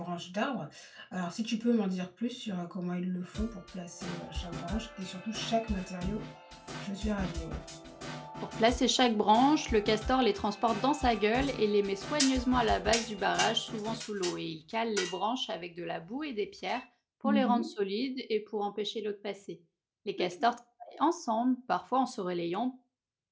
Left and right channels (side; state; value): both; identical; correlation 1.00